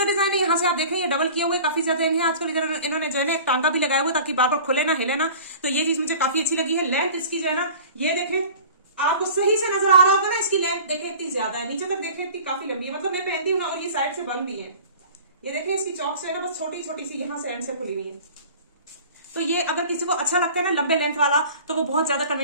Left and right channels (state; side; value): inverted; both; correlation -0.42